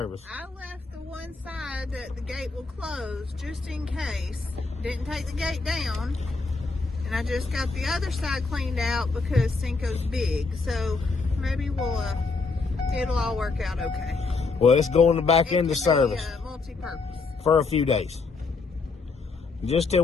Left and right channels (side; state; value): right; quieter; 4.1 dB